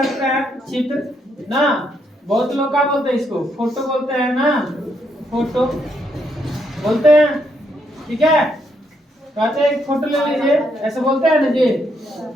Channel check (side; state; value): both; normal; correlation 0.76